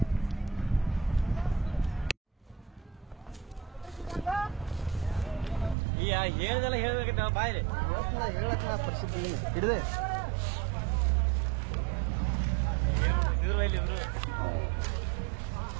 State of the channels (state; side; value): drops out; left; at 5.8 s